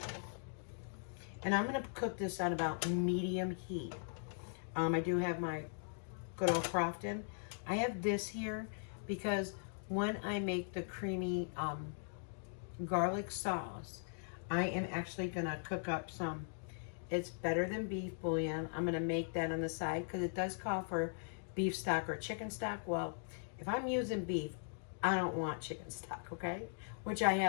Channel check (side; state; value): right; silent; digital silence